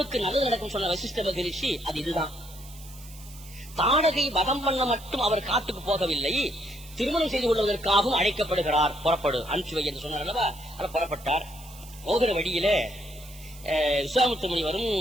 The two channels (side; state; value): right; noise; hiss, 19 dB below the sound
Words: நல்லது நடக்கும் சொன்ன வசிஷ்ட மகரிஷி அது இதுதான். தாடகை வதம் பண்ண மட்டும் அவர் காட்டுக்கு போகவில்லை, திருமணம் செய்து கொள்வதற்காகவும் அழைக்கப்படுகிறார். புறப்படு, அனுப்பிச்சு வை என்று சொன்னார் அல்லவா. அதை புறப்பட்டார். போகிற வழியிலே விஸ்வாமித்திர முனிவரும்